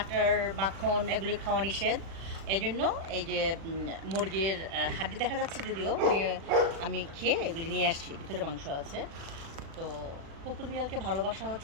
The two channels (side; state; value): left; late; 36 ms